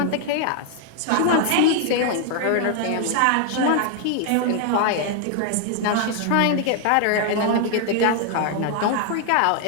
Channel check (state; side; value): different; both; correlation 0.00